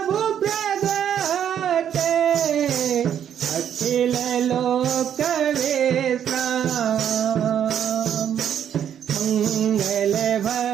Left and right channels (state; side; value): quieter; left; 9.3 dB